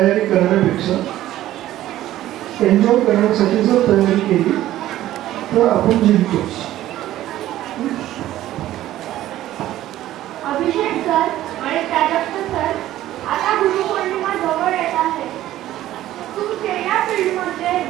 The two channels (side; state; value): left; quieter; 14.0 dB